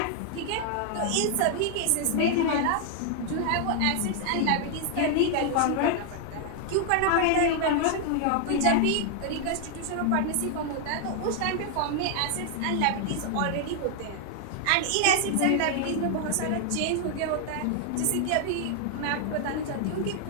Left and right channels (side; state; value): both; different; correlation 0.00